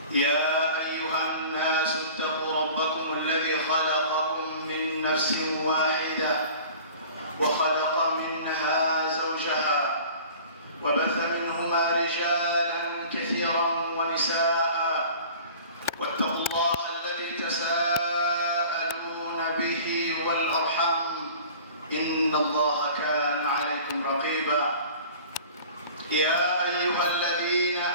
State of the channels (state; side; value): inverted; both; correlation -0.44